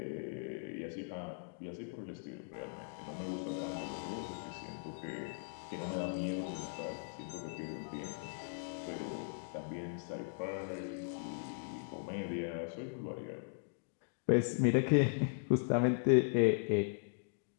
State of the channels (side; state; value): right; silent; digital silence